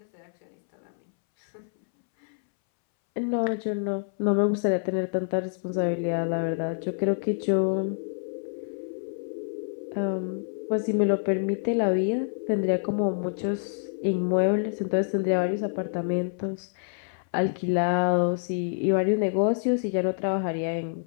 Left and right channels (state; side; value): silent; right; 60 dB below the other